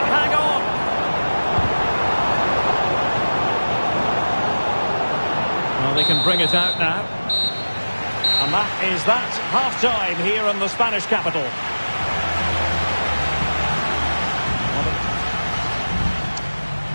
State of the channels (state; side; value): inverted; both; correlation -1.00